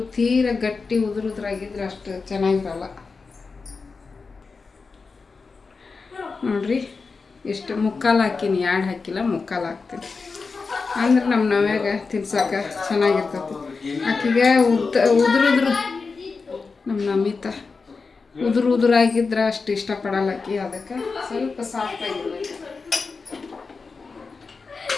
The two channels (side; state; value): right; quieter; 4.5 dB